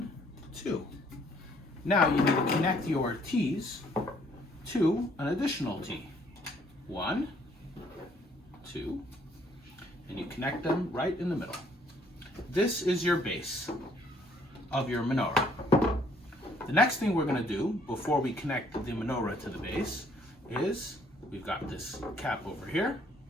2. Now you need to connect your T's to an additional T. 1, 2, and you connect them right in the middle. This is your base of your menorah. The next thing we're going to do before we connect the menorah to the base is we've got this cap over here,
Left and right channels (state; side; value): normal; both; correlation 0.64